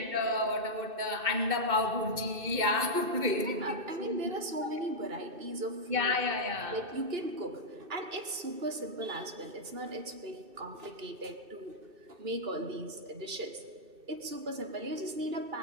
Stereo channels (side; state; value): left; late; 2.6 ms